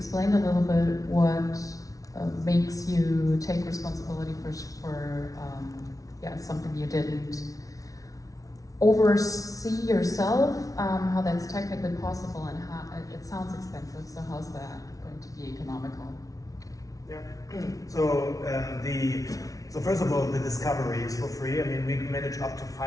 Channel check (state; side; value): late; right; 0.17 ms